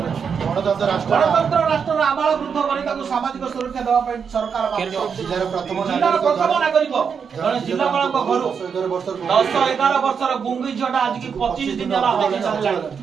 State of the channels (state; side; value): quieter; left; 6.5 dB